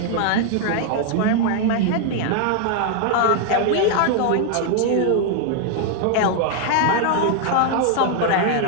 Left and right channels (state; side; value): different; both; correlation 0.00